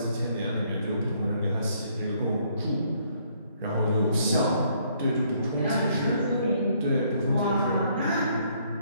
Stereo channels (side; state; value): both; inverted; correlation -0.67